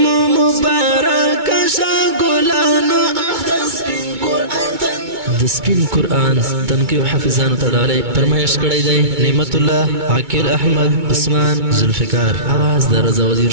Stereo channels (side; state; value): left; late; 2.2 ms